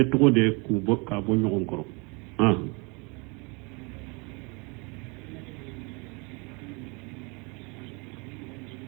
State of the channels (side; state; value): left; quieter; 29.8 dB